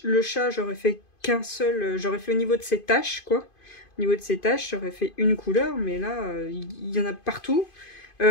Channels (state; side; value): late; right; 2.5 ms